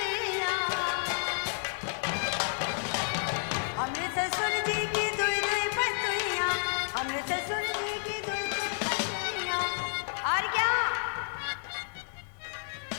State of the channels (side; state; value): right; silent; 57 dB below the other